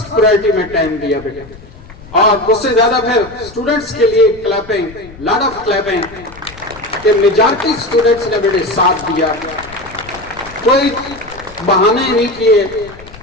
پرائرٹی میں ٹائم دیا بیٹے, اور اس سے زیادہ پھر اسٹوڈنٹس کے لیے کلیپنگ, لاٹ آف کلیپنگ, کہ میجارٹی اسٹوڈنٹس نے بیٹے ساتھ دیا, کوئی بہانے نہیں کیے,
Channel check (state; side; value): noise; left; rumble, 19 dB below the sound